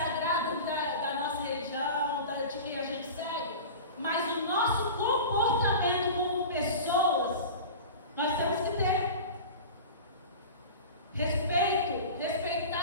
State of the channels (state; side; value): inverted; both; correlation -0.33